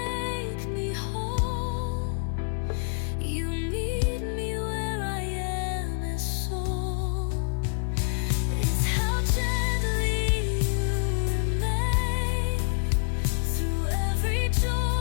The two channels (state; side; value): silent; right; digital silence